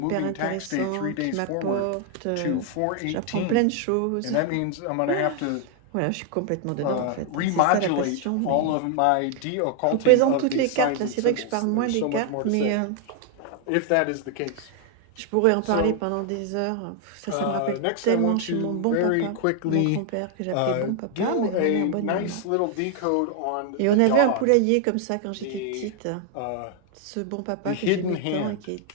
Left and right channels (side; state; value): both; different; correlation 0.00